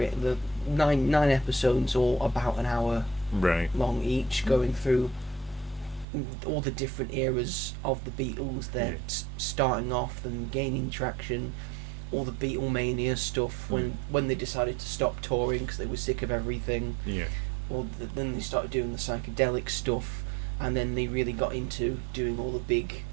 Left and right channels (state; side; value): drops out; left; at 6.1 s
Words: nine episodes, all about an hour Right. long each, going through all the different eras of the Beatles. They're starting off and gaining traction, all the Beatlemania stuff when they decided to stop touring because they were sick of everything, Yeah. then they started doing the psychedelic stuff, and then they really got into doing all the big